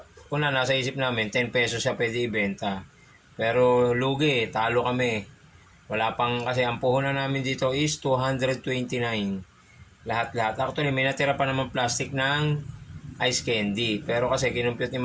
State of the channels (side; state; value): both; identical; correlation 1.00